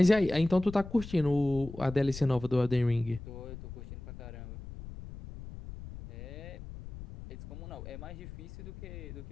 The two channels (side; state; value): left; noise; rumble, 12 dB below the sound